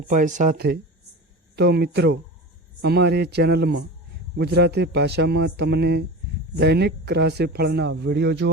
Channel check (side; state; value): both; normal; correlation 0.31